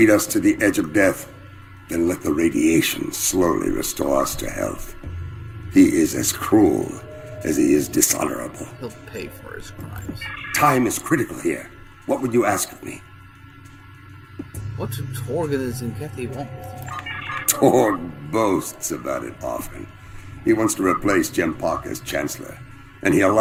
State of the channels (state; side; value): identical; both; correlation 1.00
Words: us to the edge of death, then let the radiation slowly restore us to health. He is as cruel as he is dishonorable. He'll pay for his crimes. Time is critical here. What would you ask of me? What do Torg and his Zenkethi want with you? Torg boasts about it often. He wants to replace Jempak as Chancellor, and he